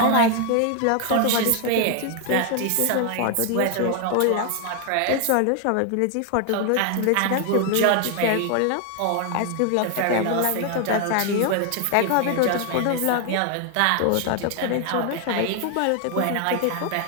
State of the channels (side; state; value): both; different; correlation 0.00